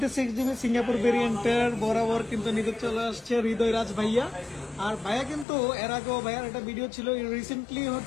Singapore ভেরিয়েন্টের বরাবর কিন্তু নিতে চলে আসছে হৃদয় রাজ ভাইয়া। আর ভাইয়া কিন্তু এর আগেও ভাইয়ার একটা ভিডিও ছিল, রিসেন্টলি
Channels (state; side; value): drops out; right; at 5.5 s